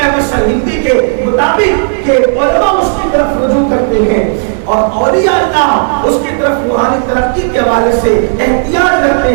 احمد سرہندی کے مطابق کہ علماء اس کی طرف رجوع کرتے ہیں اور اولیاء اللہ اس کی طرف روحانی ترقی کے حوالے سے احتیاج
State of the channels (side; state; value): left; silent; digital silence